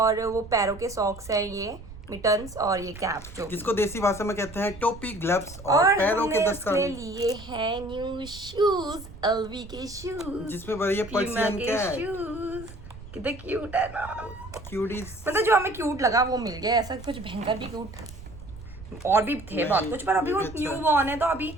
वो पैरों के सॉक्स हैं, ये मिटन्स और ये कैप, जो जिसको देसी भाषा में कहते हैं टोपी, ग्लव्स और पैरों के दस्ताने। लिए हैं न्यू शूज, एलवी के शूज, जिसमें बढ़िया पर्सियन कैट। शूज कितने क्यूट है ना। क्यूटीज। मतलब जो हमें क्यूट लगा वो मिल गया, ऐसा कुछ भयंकर भी क्यूट, और भी थे बहुत कुछ, पर अभी वो न्यू बॉर्न है, तो अभी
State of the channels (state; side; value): noise; right; rumble, 15 dB below the sound